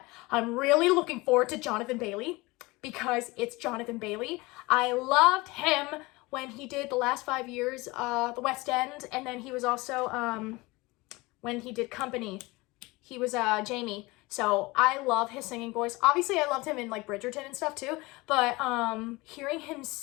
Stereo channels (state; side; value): quieter; right; 22.8 dB